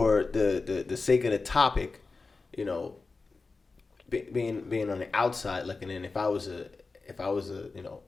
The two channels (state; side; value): quieter; right; 4.0 dB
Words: the sake of the topic, you know, being on the outside looking in, if I was a